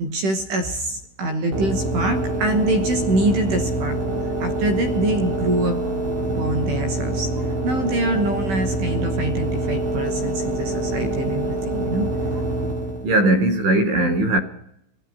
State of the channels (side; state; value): left; late; 16 ms